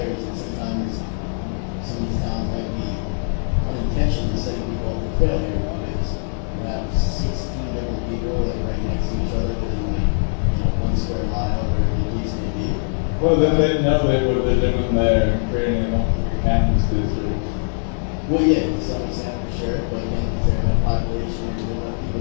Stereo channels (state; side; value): silent; right; digital silence